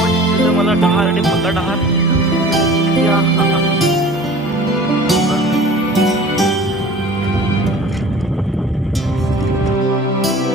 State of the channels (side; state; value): both; normal; correlation 0.44